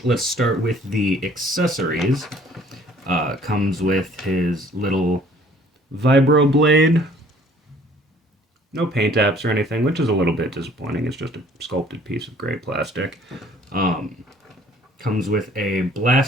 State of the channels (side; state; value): both; normal; correlation 0.56